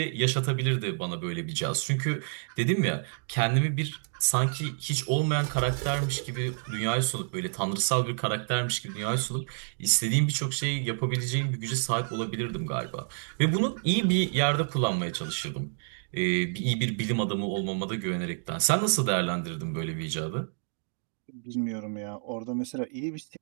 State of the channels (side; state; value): left; silent; 59 dB below the other